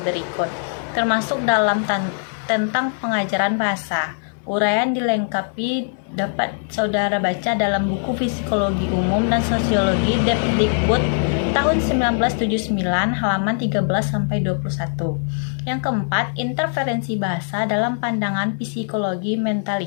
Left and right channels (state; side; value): silent; right; 62 dB below the other